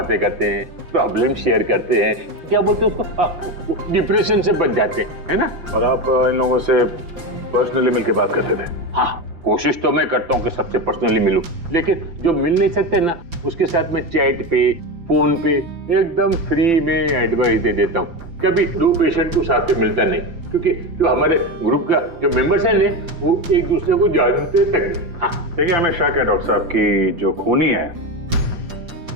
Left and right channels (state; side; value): late; left; 5.9 ms